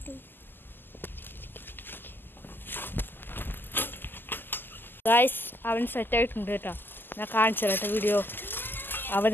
ഗായ്സ്, അവൻ സെറ്റായിട്ടുണ്ട് കേട്ടോ. ഞാൻ കാണിച്ചു തരാം കേട്ടോ വീഡിയോ.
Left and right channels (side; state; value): right; late; 0.094 ms